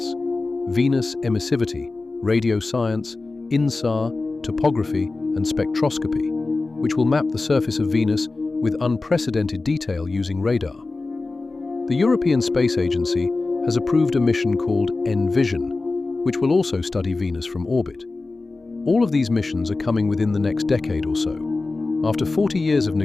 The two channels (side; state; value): right; quieter; 3.5 dB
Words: Venus Emissivity, Radio Science, INSAR, Topography, and Spectroscopy, which will map the surface of Venus with unprecedented detail using radar. The European Space Agency has approved a mission called ENVISION, which will also study Venus from orbit. All of these missions are coming within the next decade or so. After 40 years of